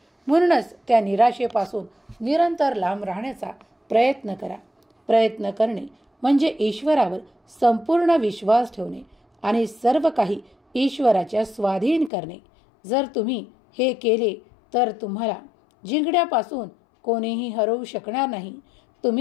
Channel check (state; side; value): drops out; right; at 12.1 s